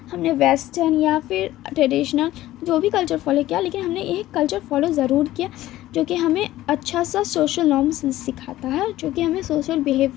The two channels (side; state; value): right; quieter; 15.2 dB